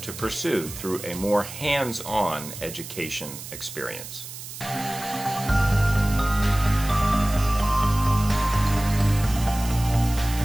to pursue through a more hands-on education experience.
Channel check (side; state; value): right; noise; hiss, 12 dB below the sound